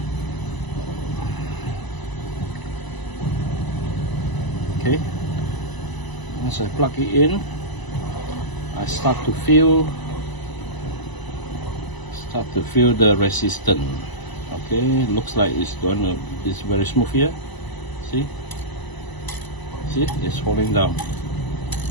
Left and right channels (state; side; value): late; right; 1.0 ms